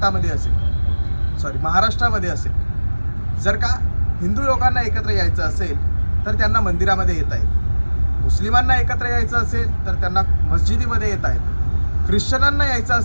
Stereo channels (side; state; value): both; inverted; correlation -1.00